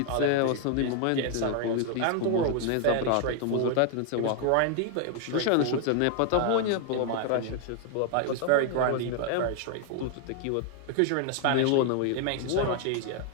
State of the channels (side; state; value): both; different; correlation 0.00